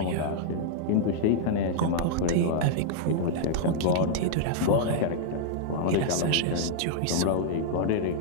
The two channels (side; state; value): both; different; correlation -0.01